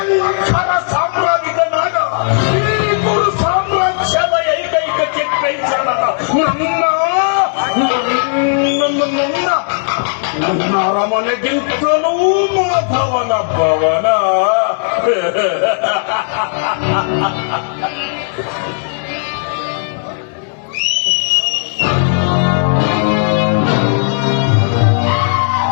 ಸಾಮ್ರಾಜ್ಯನಾದ ಈ ಗುರು ಸಾಮ್ರಾಜ್ಯದ ಏಕೈಕ ಚಿತ್ರೈಸಣದ ನನ್ನ ಅರಮನೆಗಿಂತಲೂ ಮಾಧವನ ಭವನ.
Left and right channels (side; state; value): right; silent; digital silence